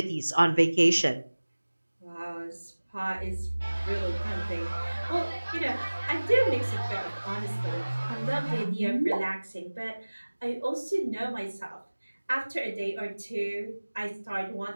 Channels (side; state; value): both; inverted; correlation -1.00